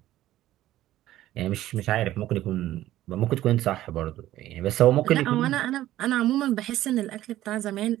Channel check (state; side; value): quieter; left; 14.3 dB